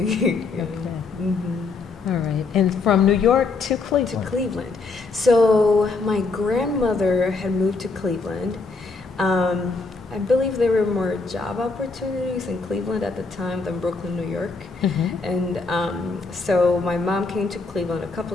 All right. And from New York to Cleveland? To Cleveland. So my grandmother had moved to Cleveland. I believe there were more job opportunities in Cleveland at the time than Brooklyn, New York. And so my mom came to Cleveland a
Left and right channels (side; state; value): right; quieter; 4.1 dB